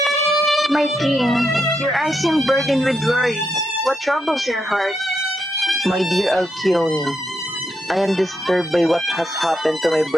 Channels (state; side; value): normal; both; correlation 0.82